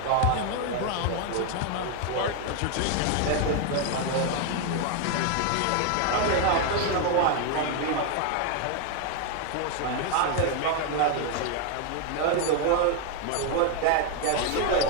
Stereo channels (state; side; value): different; both; correlation 0.01